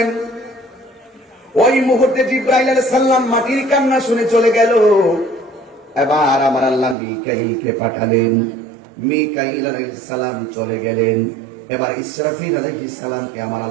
ওই মুহূর্তে জিবরাইল আলাইহিস সালাম মাটির কান্না শুনে চলে গেল। এবার আমার আল্লাহ মিকাইলকে পাঠালেন। মিকাইল আলাইহিস সালাম চলে গেলেন। এবার ইসরাফিল আলাইহিস সালামকে আমার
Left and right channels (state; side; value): drops out; left; at 7.0 s